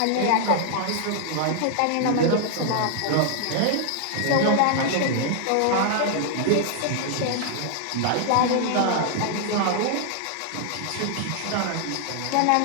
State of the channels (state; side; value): different; both; correlation 0.00